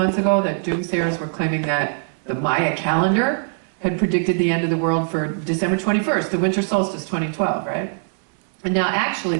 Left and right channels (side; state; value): left; silent; 65 dB below the other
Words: ago, that doomsayers were claiming that the Maya calendar had predicted the end of the world for December 21st, the winter solstice 2012, right? And now actually